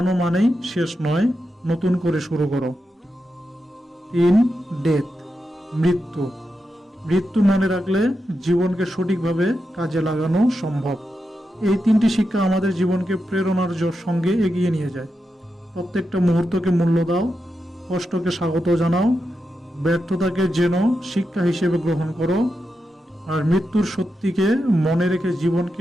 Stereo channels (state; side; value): normal; both; correlation 0.88